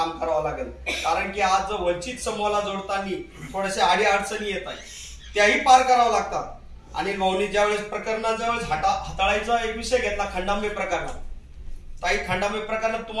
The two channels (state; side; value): identical; both; correlation 1.00